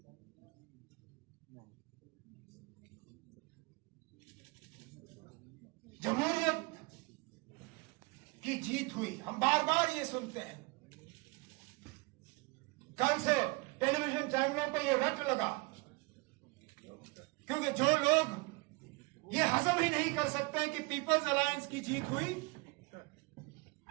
जमहूरियत की जीत हुई, हम बार बार ये सुनते हैं। कल से टेलीविजन चैनलों पे ये रट लगा, क्योंकि जो लोग ये हजम ही नहीं कर सकते कि पीपल्स अलायंस की जीत हुई,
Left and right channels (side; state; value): left; quieter; 26.8 dB